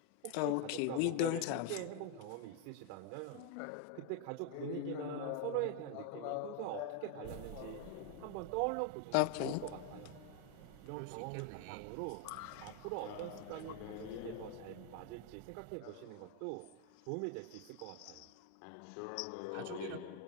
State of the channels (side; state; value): both; different; correlation 0.01